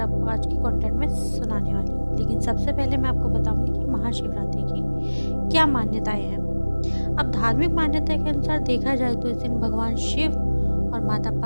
आज की कंटेंट में सुनाने वाली हूँ, लेकिन सबसे पहले मैं आपको बताऊँगी कि महाशिवरात्रि की क्या मान्यताएँ हैं। अब धार्मिक मान्यता के अनुसार देखा जाए तो इस दिन भगवान शिव और माता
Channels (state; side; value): inverted; both; correlation -1.00